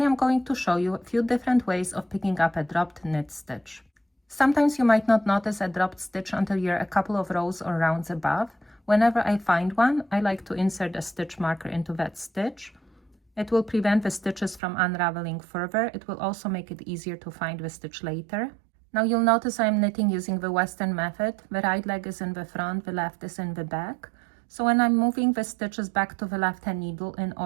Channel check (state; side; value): drops out; left; at 14.6 s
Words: I'm going to show you a few different ways of picking up a dropped knit stitch. Sometimes you might not notice a dropped stitch until you're a couple of rows or rounds above. Whenever I find one, I like to insert a stitch marker into that stitch. It will prevent the stitches from unraveling further. It will also make it easier to find the stitch later. Now you'll notice I'm knitting using the Western method. The right leg is in the front, the left is in the back. So when I'm moving the stitches back to the left hand needle in